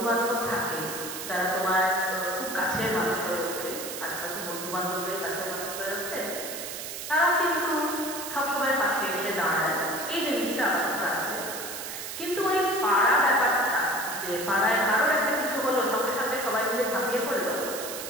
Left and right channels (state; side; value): noise; right; hiss, 7 dB below the sound